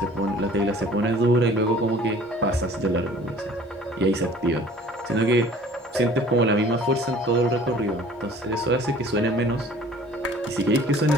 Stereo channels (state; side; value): normal; both; correlation 0.49